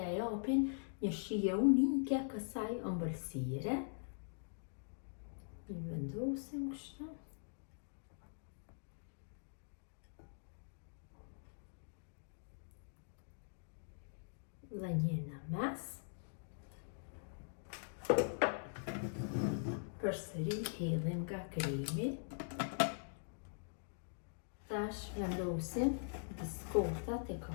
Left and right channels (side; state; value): right; silent; digital silence